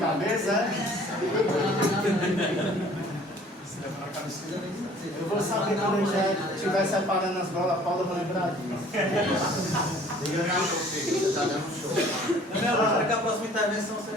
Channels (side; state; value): both; normal; correlation 0.52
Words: é? Eu vou saber quando eu já estiver separando as bolas, a Paula, eu vou lembrar disso. Você está dando um show. Eu me acho que a próxima intervenção